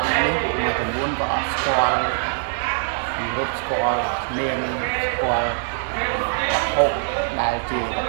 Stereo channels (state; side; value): silent; left; digital silence